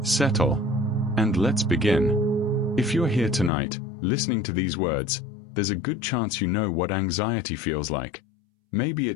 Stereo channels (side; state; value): right; drops out; at 3.5 s